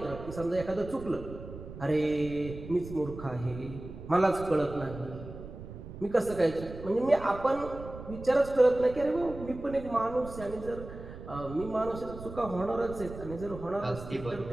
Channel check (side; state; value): right; noise; rumble, 12 dB below the sound